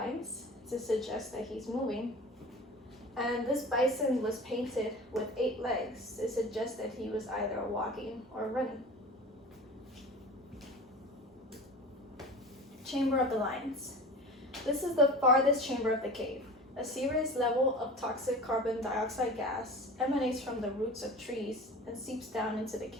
to suggest that he's moving, and this bison was painted with 8 legs to suggest that he was either walking or running. Chamber of the Lions. This is the farthest chamber of the cave. A serious level of toxic carbon dioxide gas emanates from the roots of trees and seeps down into the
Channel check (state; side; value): normal; both; correlation 0.37